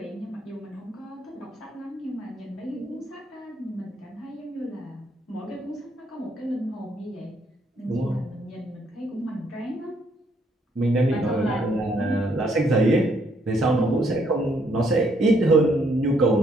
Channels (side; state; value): both; normal; correlation 0.70